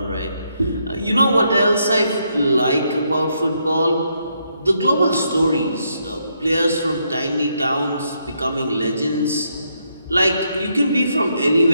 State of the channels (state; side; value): inverted; both; correlation -0.77